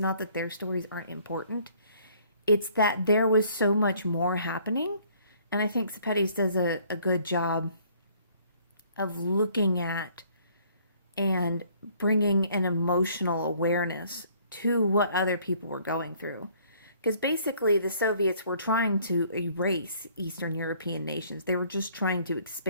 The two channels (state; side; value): inverted; both; correlation -0.60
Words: that their stories aren't important. It's that there was so much more happening. And I think Sepetys does a good job of looking at and bringing an emotional awareness to what other people were going through. Because basically the Soviets were trying to erase Eastern European nations. They were just trying to